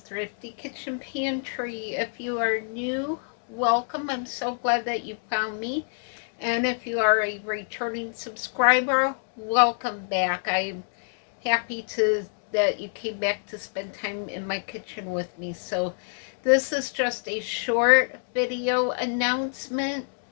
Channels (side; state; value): right; silent; 59 dB below the other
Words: Thrifty Kitchen Pantry. If you are new, welcome. I'm so glad that you found me. And if you are a returning subscriber, welcome back. I'm happy that you came back to spend time in my kitchen with me. So this is just a short video announcement.